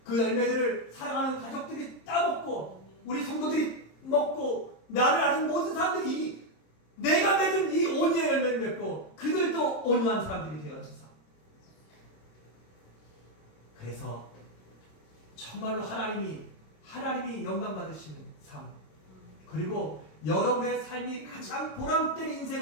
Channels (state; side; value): late; right; 27 ms